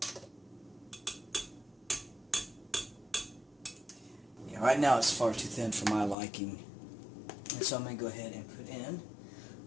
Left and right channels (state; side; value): drops out; right; at 6.2 s